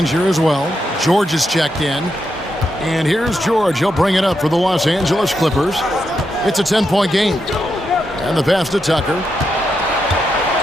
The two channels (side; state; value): both; normal; correlation 0.84